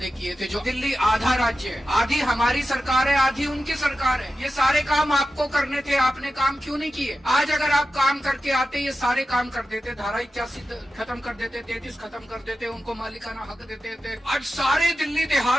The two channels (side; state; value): both; normal; correlation 0.92